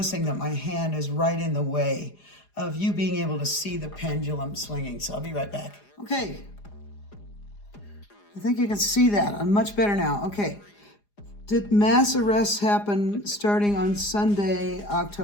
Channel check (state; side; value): late; right; 4.9 ms